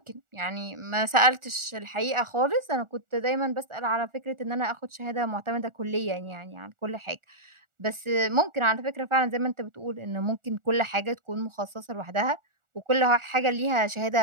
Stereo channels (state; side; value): late; left; 1.4 ms